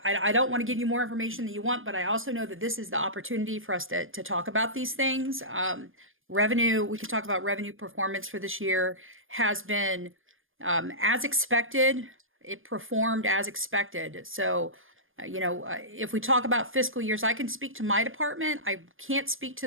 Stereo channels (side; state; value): left; late; 0.59 ms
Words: don't want to give you more information than you want, but I also know that this is the opportunity for us to talk about these things. Revenue, we can talk about revenue performance for this year has been as expected. It performed as expected. So, if we talk about fiscal years, I can speak to my department. I can't speak